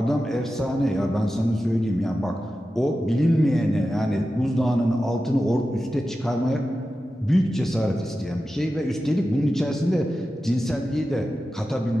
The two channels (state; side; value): normal; both; correlation 0.92